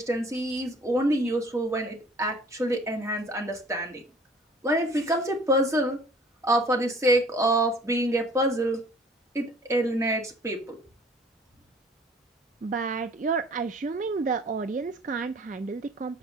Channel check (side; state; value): both; normal; correlation 0.52